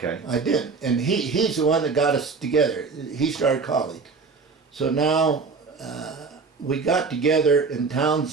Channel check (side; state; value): left; quieter; 4.7 dB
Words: I didn't, and he's the one that got us together. He started college, so now we got together in